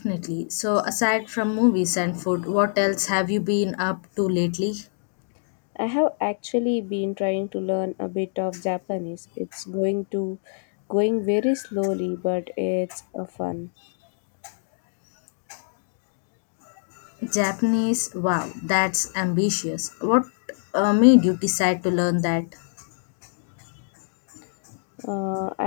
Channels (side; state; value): right; silent; digital silence